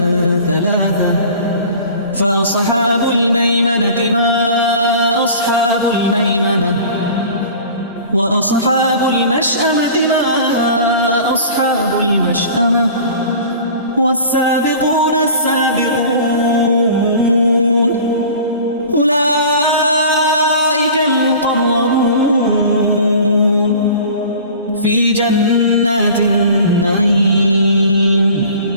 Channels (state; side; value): inverted; both; correlation -0.42